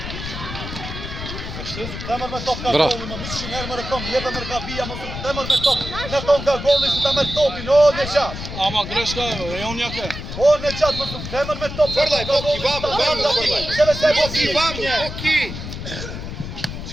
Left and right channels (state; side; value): noise; left; rumble, 8 dB below the sound